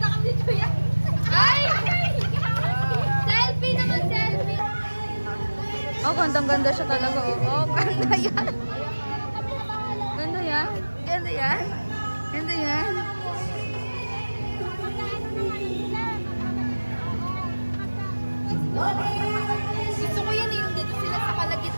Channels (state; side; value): inverted; both; correlation -1.00